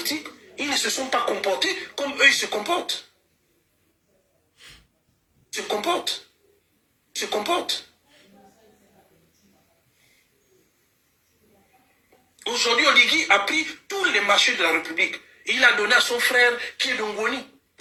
ils ne se sont pas comportés comme eux ils se comportent. Se comportent. Aujourd'hui, Oligui a pris tous les marchés de la République. Il a donné à son frère qui est d'Ongoni,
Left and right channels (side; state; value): both; identical; correlation 1.00